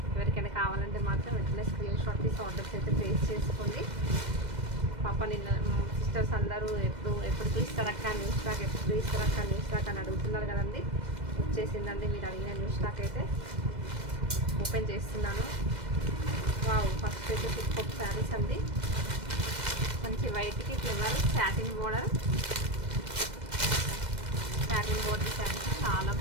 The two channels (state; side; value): late; left; 2.0 ms